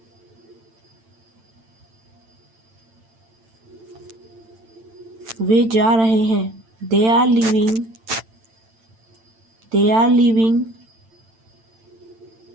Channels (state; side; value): late; left; 8.9 ms